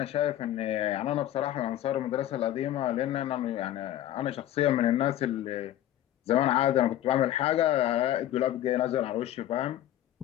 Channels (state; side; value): quieter; right; 12.7 dB